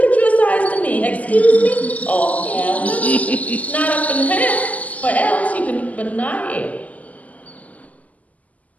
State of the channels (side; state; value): right; late; 0.075 ms